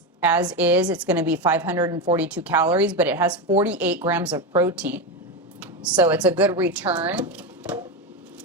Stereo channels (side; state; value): both; normal; correlation 0.14